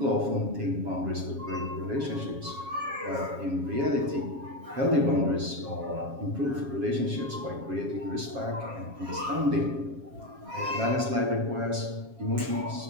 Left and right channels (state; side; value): late; left; 7.3 ms